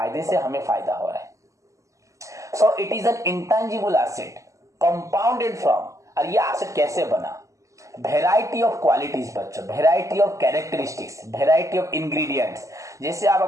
से हमें फायदा हो रहा है। So it is an intangible asset compounded from, और ये एसेट कैसे बना? वेराइटी ऑफ क्वालिटीज बच्चों, variety of characteristics, variety of ingredients. जैसे आप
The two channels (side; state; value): left; late; 0.16 ms